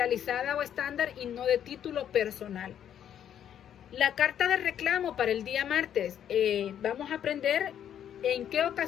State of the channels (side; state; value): right; quieter; 9.7 dB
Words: o estándar y no de título personal. La carta de reclamo para el día martes. Vamos a aprender en qué